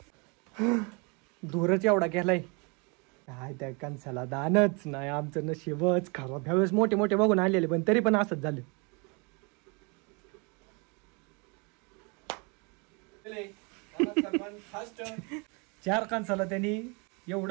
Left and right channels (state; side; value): quieter; left; 31.6 dB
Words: दूरच एवढा गेलाय काय त्या कणसाला दानच नाही आमचं नशीबच खराब ह्यावेळेस मोठे मोठे बघून आलेले पण तरी पण असंच झालं चार कणसाला त्यांनी